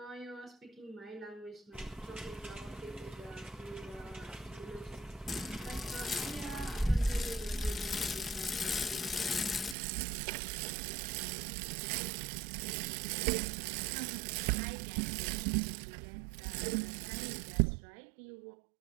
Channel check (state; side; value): drops out; left; at 9.8 s